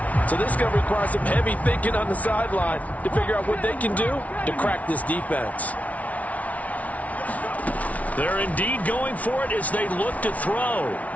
So this is going to require some heavy thinking on the sideline to figure out what they can do to crack this defense. They're indeed going for it as they look to throw.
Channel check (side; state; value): right; late; 0.069 ms